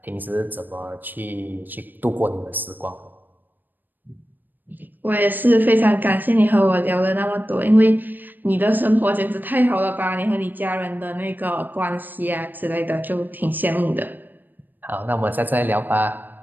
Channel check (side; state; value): left; late; 0.090 ms